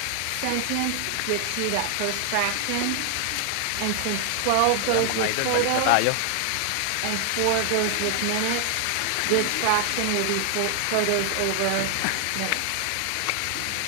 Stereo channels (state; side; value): different; both; correlation 0.00